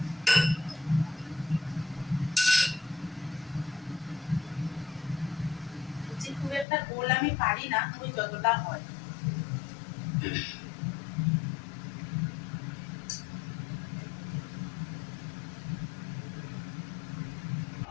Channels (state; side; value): drops out; right; at 6.7 s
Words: খুব একটা গোল আমি পারি না, ওই যতটা হয়।